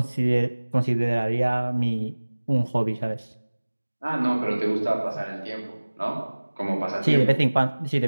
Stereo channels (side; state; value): both; inverted; correlation -1.00